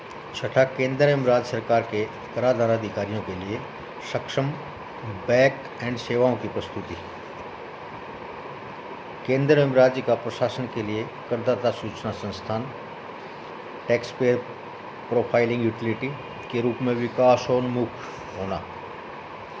छठा, केंद्र एवं राज्य सरकार के कराधान अधिकारियों के लिए सक्षम बैक एंड सेवाओं की प्रस्तुति। केंद्र एवं राज्य का प्रशासन के लिए करदाता सूचना संस्थान टैक्स पेयर प्रोफाइलिंग यूटिलिटी के रूप में विकासोन्मुख होना।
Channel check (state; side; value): identical; both; correlation 1.00